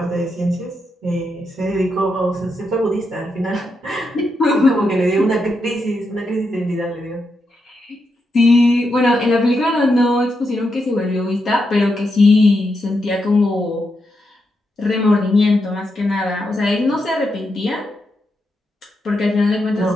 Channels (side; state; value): both; normal; correlation 0.84